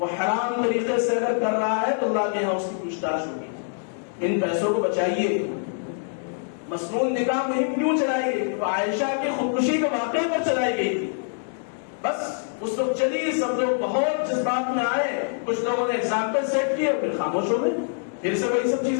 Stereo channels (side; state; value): right; silent; digital silence